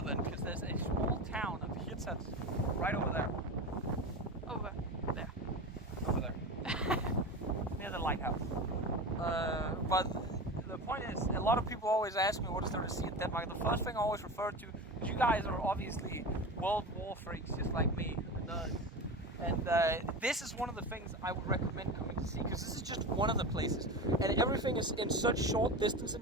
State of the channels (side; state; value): both; normal; correlation 0.27